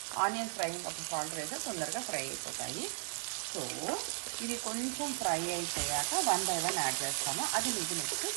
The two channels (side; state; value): left; silent; digital silence